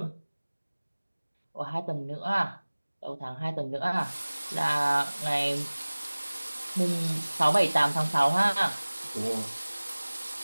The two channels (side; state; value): both; inverted; correlation -1.00